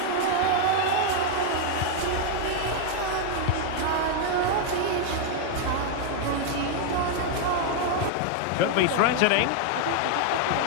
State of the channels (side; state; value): both; different; correlation 0.00